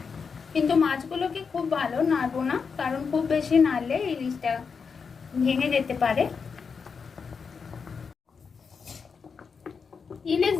কিন্তু মাছগুলোকে খুব ভালো নাড়বো না, কারণ খুব বেশি নাড়লে ইলিশটা ভেঙে যেতে পারে। ইলিশ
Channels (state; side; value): quieter; right; 5.6 dB